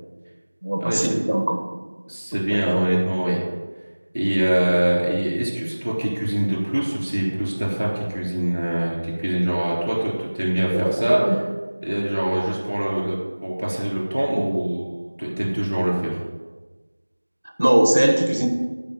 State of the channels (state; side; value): inverted; both; correlation -1.00